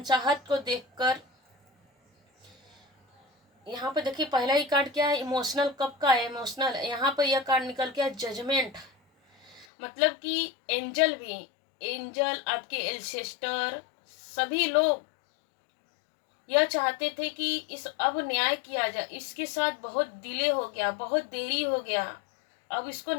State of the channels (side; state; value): right; drops out; at 9.7 s